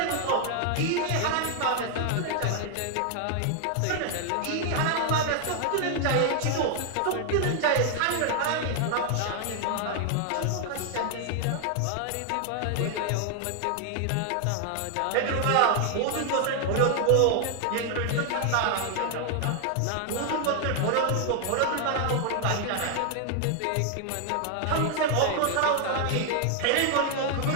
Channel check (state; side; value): different; both; correlation 0.00